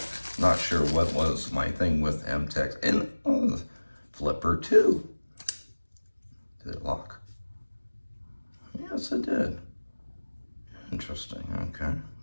Not sure what was my thing with Mtech. And flipper too. Did it lock? Yes, it did. Interesting. Okay,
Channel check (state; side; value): inverted; both; correlation -1.00